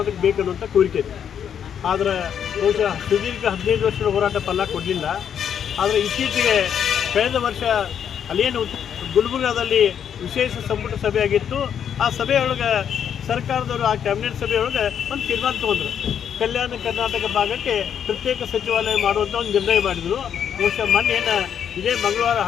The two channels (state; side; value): quieter; right; 8.5 dB